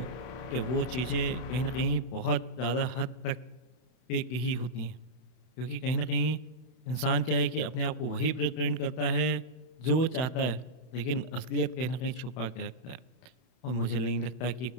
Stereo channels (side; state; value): right; late; 32 ms